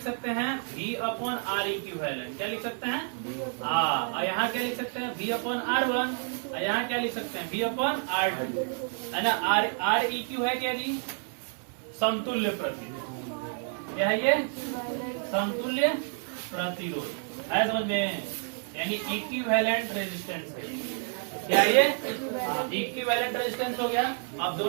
सकते हैं V/R इक्विवेलेंट, क्या लिख सकते हैं, यहाँ क्या लिख सकते हैं V/R1, यहाँ क्या लिख सकते हैं V/R2 है ना। R EQ है क्या जी, समतुल्य प्रतिरोध, क्या है ये, समतुल्य प्रतिरोध है समझ में, यानी इक्विवेलेंट रेजिस्टेंस है, क्या ये इक्विवेलेंट रेजिस्टेंस हो गया। अब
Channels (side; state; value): left; silent; 56 dB below the other